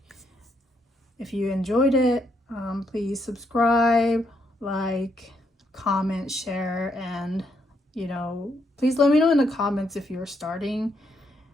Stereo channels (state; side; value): normal; both; correlation 0.76